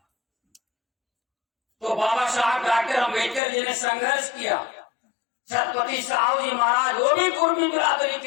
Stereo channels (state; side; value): drops out; right; at 3.4 s